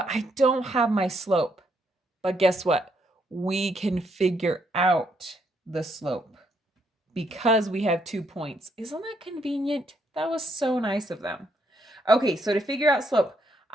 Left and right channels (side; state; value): both; normal; correlation 0.74